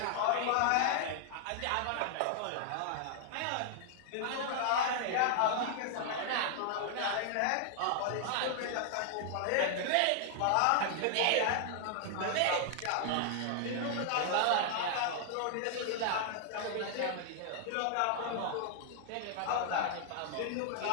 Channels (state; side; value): different; both; correlation 0.00